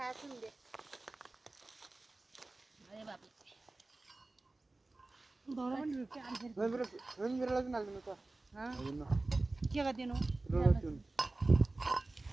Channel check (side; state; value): left; quieter; 3.1 dB